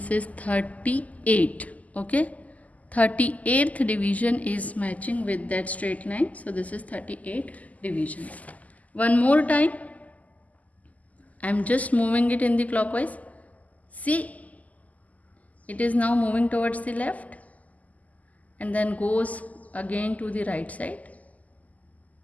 is 38. Okay, 38th division is matching with that straight line. So this is 38 divisions. One more time, I am just moving it in the clockwise. See, it is now moving towards the left and then goes again to the right side.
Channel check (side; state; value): right; late; 0.075 ms